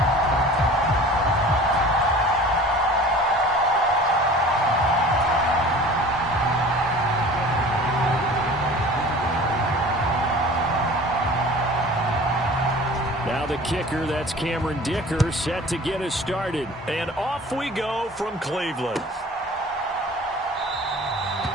Now the kicker, that's Cameron Dicker, set to get us started. And off we go from Cleveland.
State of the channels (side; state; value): both; normal; correlation 0.43